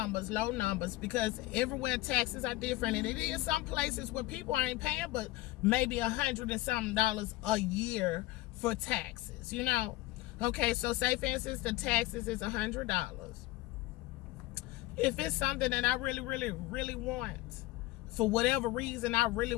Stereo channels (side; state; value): right; quieter; 18.3 dB